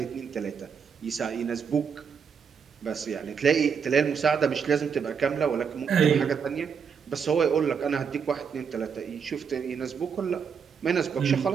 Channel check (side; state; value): left; quieter; 6.6 dB